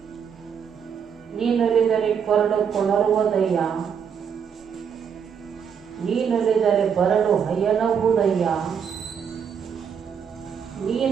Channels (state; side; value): quieter; left; 7.3 dB